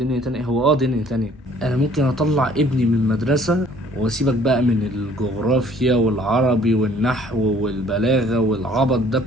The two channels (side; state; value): both; normal; correlation 0.57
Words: تانية، هو دنيا تانية. انا ممكن اطلع ابني من المدرسة واسيبك بقى من الجغرافيا والعربي والنحو والبلاغة والعبط ده